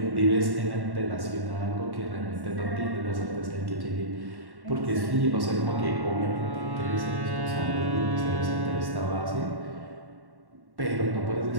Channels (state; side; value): late; left; 1.1 ms